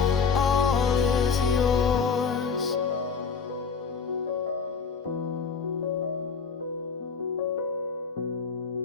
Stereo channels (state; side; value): quieter; right; 5.6 dB